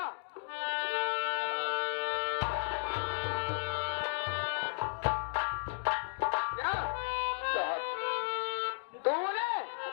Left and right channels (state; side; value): silent; right; digital silence